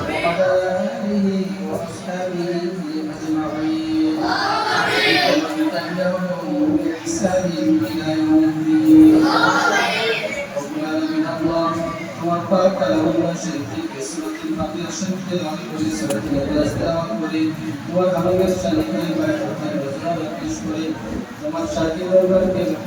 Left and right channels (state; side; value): identical; both; correlation 1.00